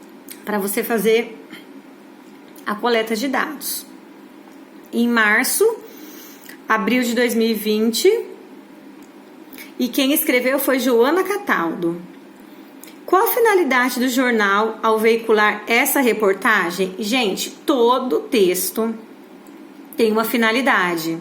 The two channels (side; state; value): both; identical; correlation 1.00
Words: para você fazer a coleta de dados. Em março, abril de 2020, e quem escreveu foi Joana Cataldo. Qual a finalidade do jornal ao veicular essa reportagem? Gente, todo texto tem uma finalidade.